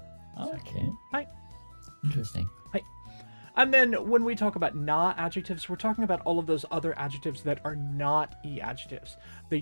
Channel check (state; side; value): inverted; both; correlation -1.00